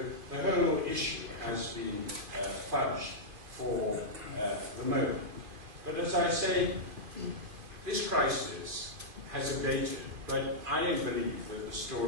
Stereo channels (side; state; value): left; late; 2.5 ms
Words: the whole issue has been fudged for the moment. But as I say, this crisis has abated, but I don't believe that the